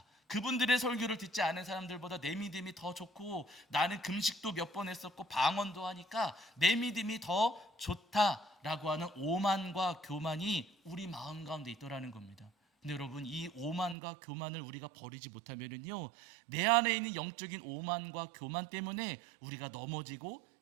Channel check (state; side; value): drops out; left; at 14.0 s